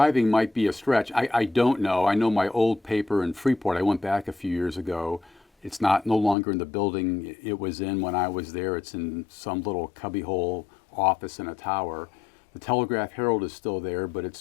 might be a stretch. I don't know. I know my old paper in Freeport, I went back a few years ago. It's no longer in the building it was in when I was there. It's in some little cubbyhole office in a tower. The Telegraph Herald is still there, but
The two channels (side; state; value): right; drops out; at 6.4 s